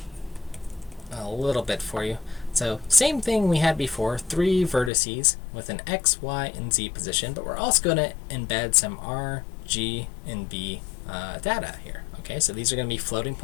little bit for you. So same thing we had before, 3 vertices with an x, y, and z position, but we're also going to embed some r, g, and b data here. Okay, so these are going to be floating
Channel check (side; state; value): right; drops out; at 4.9 s